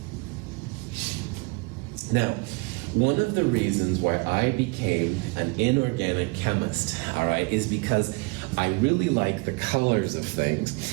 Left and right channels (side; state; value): left; quieter; 27.7 dB